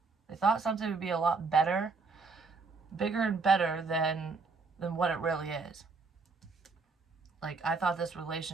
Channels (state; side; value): quieter; left; 4.3 dB